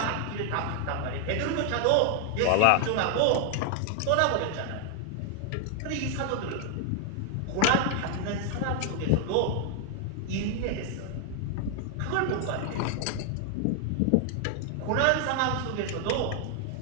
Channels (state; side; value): different; both; correlation 0.00